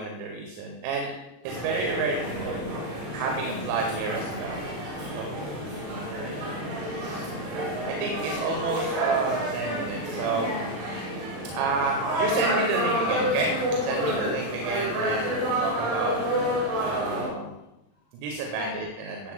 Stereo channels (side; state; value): left; late; 34 ms